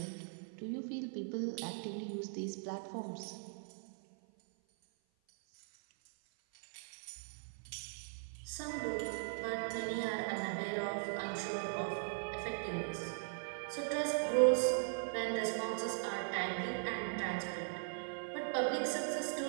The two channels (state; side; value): silent; left; 51 dB below the other